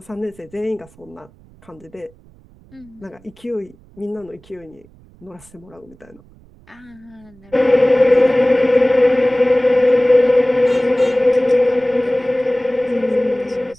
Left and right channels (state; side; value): noise; right; rumble, 27 dB below the sound